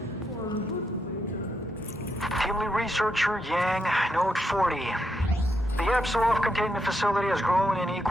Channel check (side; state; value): both; normal; correlation 0.81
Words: lead researcher Yang, Note 40. The Apsulov containment facility has grown in